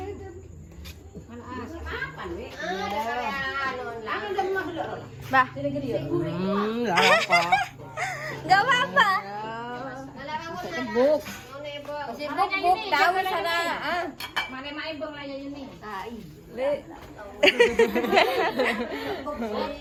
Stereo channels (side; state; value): both; identical; correlation 1.00